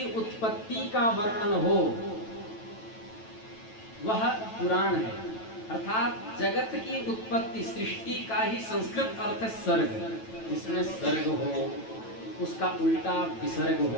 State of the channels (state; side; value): late; right; 9.1 ms